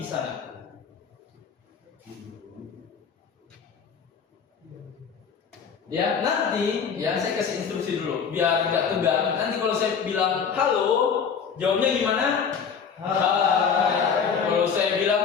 di sana. Ya, nanti ya saya kasih instruksi dulu biar nggak tegang. Nanti kalau saya bilang halo, jawabnya gimana? Hai. Kalau saya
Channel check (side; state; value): right; quieter; 6.6 dB